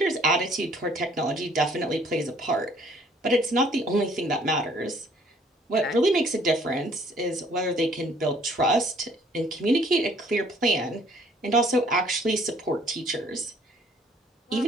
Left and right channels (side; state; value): both; normal; correlation 0.59